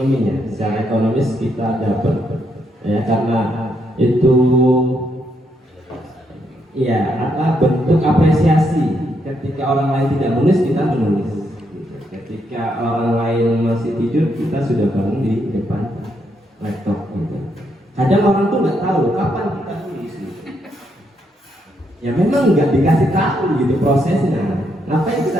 secara ekonomis kita dapat ya, karena itu ya bentuk apresiasi. Ketika orang lain tidak menulis, kita menulis. Ketika orang lain masih tidur, kita sudah bangun di depan laptop. Gitu. Kadang orang tuh nggak tahu kapan kita tulis. Gitu. Ya memang nggak dikasih tahu gitu prosesnya. Ngapain kita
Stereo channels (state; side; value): normal; both; correlation 0.77